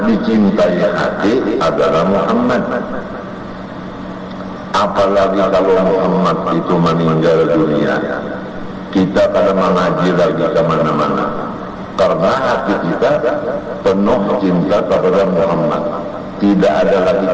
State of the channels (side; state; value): both; identical; correlation 1.00